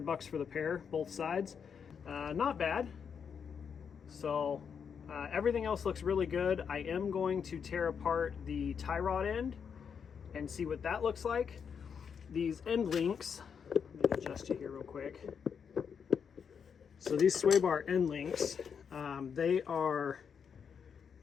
bucks for the pair, both sides. Not bad. So everything else looks really good. I am going to tear apart the tie rod end and see what that looks like. These end links, let me adjust you here real quick. So these sway bar end links, they are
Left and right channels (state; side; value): quieter; right; 6.9 dB